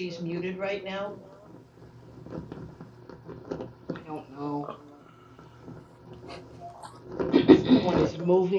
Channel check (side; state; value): both; identical; correlation 1.00